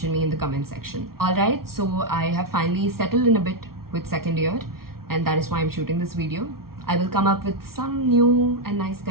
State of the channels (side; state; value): left; late; 0.94 ms